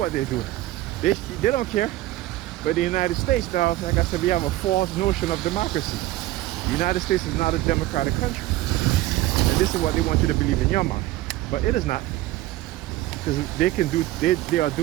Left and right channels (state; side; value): quieter; left; 16.2 dB